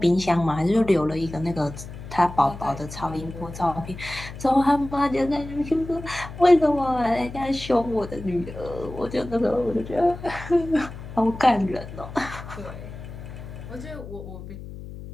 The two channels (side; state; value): left; noise; hum, 12 dB below the sound